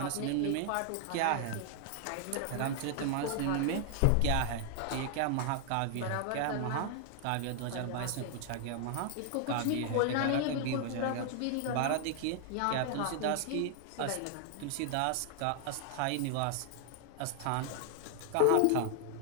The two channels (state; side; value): different; both; correlation 0.00